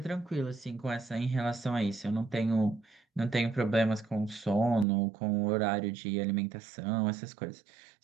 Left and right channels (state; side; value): drops out; left; at 4.9 s